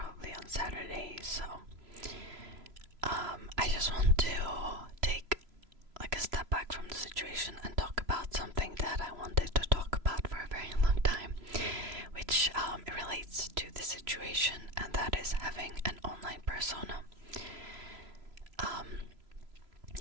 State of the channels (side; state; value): left; late; 3.0 ms